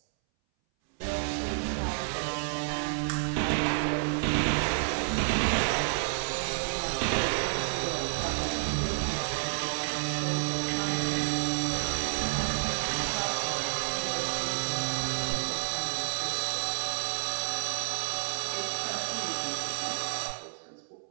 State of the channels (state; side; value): silent; left; 58 dB below the other